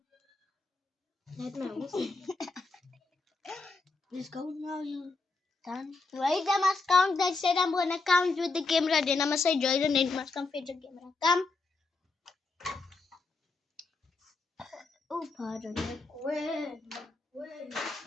Let my awesome. Let's go now, you done? Wait, I must count. I said I'm gonna count with the camera. Then I must say Joy, then it must come fetch the camera. Come. Oh, pardon. Where?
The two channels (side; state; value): right; quieter; 3.8 dB